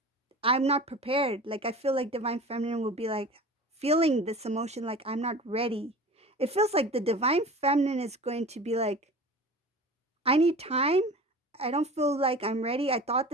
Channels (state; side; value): normal; both; correlation 0.37